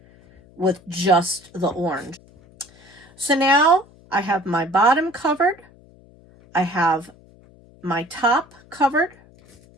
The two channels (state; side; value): noise; left; hum, 27 dB below the sound